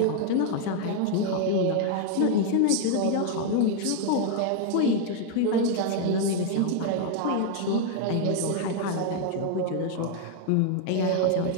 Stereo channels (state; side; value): different; both; correlation 0.00